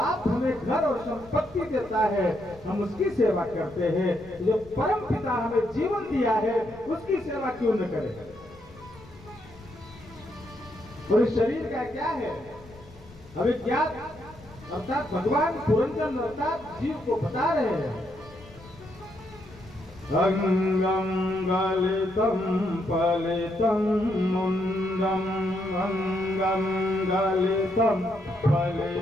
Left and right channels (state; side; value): noise; left; rumble, 22 dB below the sound